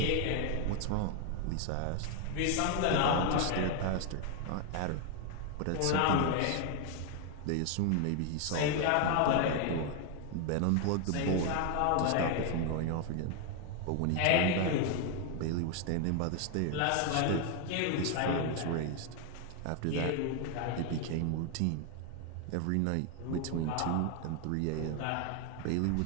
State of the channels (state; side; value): different; both; correlation 0.01